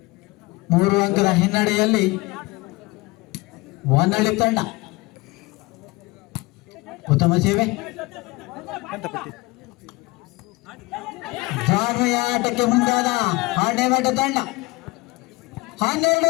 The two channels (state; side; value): quieter; right; 22.7 dB